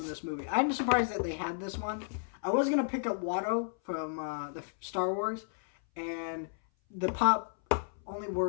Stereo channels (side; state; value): right; silent; 56 dB below the other